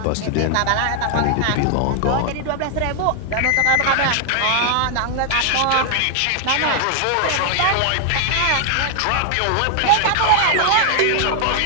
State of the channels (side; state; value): both; different; correlation 0.00